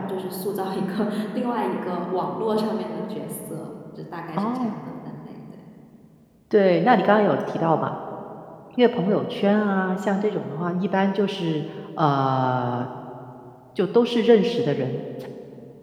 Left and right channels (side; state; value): both; identical; correlation 1.00